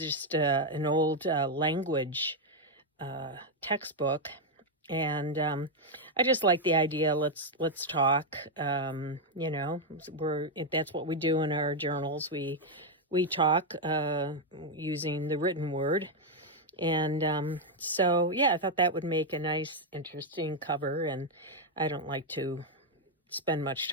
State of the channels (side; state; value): both; normal; correlation 0.01